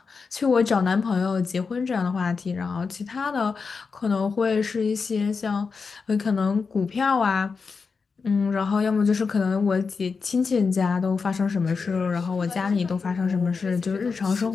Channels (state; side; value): quieter; right; 5.0 dB